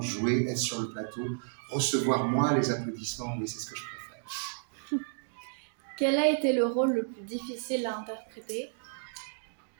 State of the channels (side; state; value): left; silent; digital silence